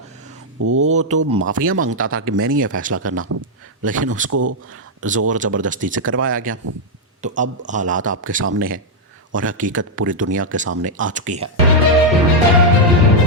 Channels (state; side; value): normal; both; correlation -0.02